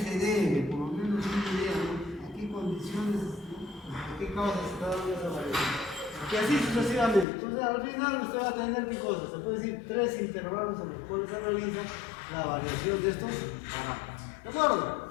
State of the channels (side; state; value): right; drops out; at 7.2 s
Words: debe, por lo menos una idea, ¿no?, a qué condiciones, a qué causas se está dando esa variación. Y así sucesivamente. Entonces al final usted va a tener qué cosas, se puede decir 3 intervalos en los cuales se realiza la variación de estos parámetros. ¿De acuerdo?